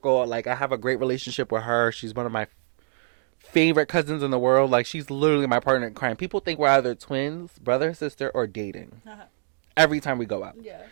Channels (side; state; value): left; silent; digital silence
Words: Like, I have a great relationship with her. She's one of my favorite cousins in the world. Like, she's literally my partner in crime. People think we're either twins, brother, sister, or dating. Every time we go out. Yeah.